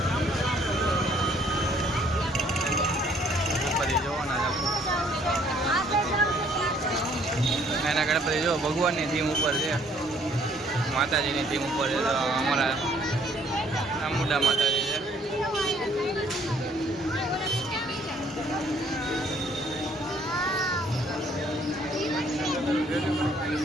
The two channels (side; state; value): both; normal; correlation 0.62